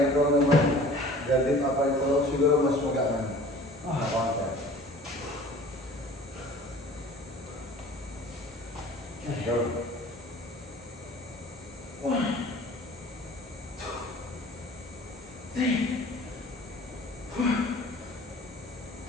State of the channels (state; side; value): normal; both; correlation 0.46